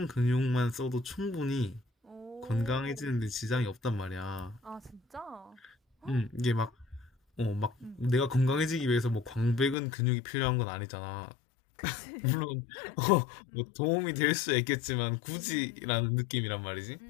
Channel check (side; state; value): right; drops out; at 9.8 s